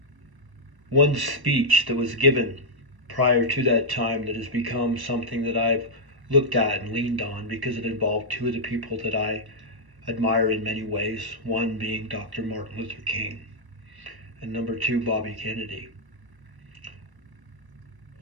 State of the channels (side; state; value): left; late; 1.1 ms